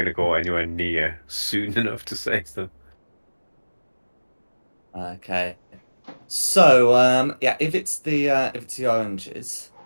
to go anywhere near soon enough to save them. Okay. So, if it's the oranges,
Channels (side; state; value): both; inverted; correlation -1.00